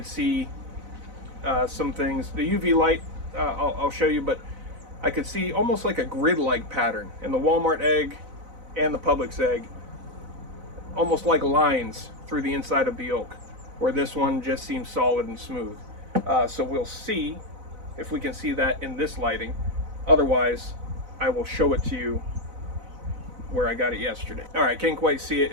see some things. The UV light I'll show you, but I could see almost like a grid-like pattern in the Walmart egg and the Publix egg, almost like lines through the inside of the yolk, where this one just seems solid and smooth. So we'll see if we can see that in this lighting. Otherwise, I will show it to you where I got it yesterday. All right, can't quite see it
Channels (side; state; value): left; late; 4.0 ms